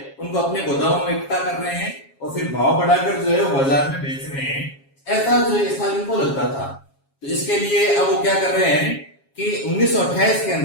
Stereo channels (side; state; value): right; late; 7.3 ms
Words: उनको अपने गोदामों में इकट्ठा कर रहे हैं और फिर भाव बढ़ाकर जो है वो बाजार में बेच रहे हैं। ऐसा जो है स्टालिन को लगता था। तो इसके लिए अब वो क्या कर रहे हैं कि 1928 के